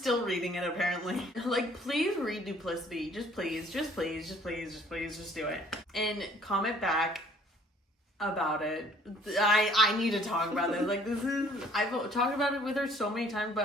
reading it apparently. Like, please read Duplicity. Just please do it. And comment back about it. I need to talk about this. Like, I've talked about it with her so many times,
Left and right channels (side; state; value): both; normal; correlation 0.58